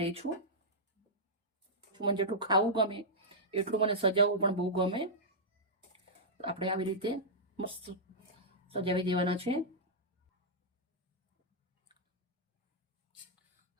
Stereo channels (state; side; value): normal; both; correlation -0.10